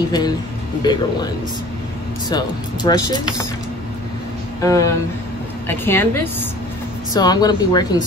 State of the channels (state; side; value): normal; both; correlation 0.46